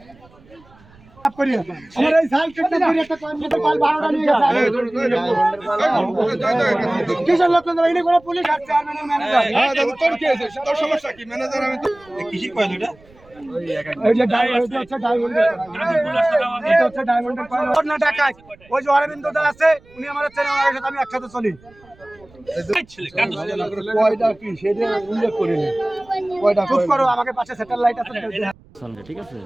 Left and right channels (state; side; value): noise; right; rumble, 27 dB below the sound